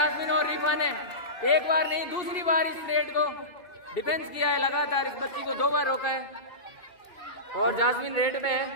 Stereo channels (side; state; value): right; late; 2.7 ms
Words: और रिफा ने एक बार नहीं दूसरी बार इस रेड को डिफेंस किया है लगातार। इस बच्ची को 2 बार रोका है और जास्मिन रेड में है।